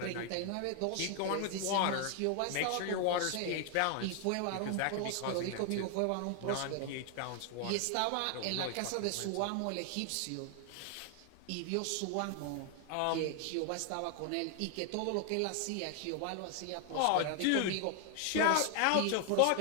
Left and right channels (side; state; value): both; different; correlation 0.00